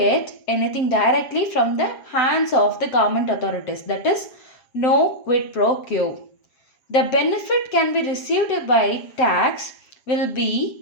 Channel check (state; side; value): late; right; 7.4 ms